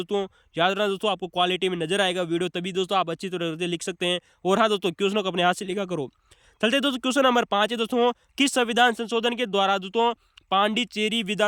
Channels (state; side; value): identical; both; correlation 1.00